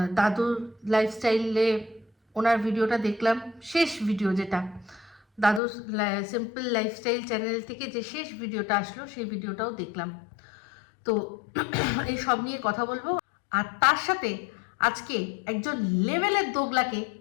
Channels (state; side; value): drops out; right; at 5.6 s